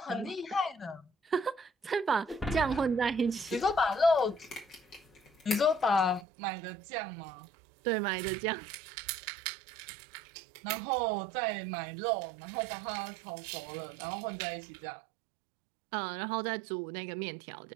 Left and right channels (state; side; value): drops out; left; at 6.2 s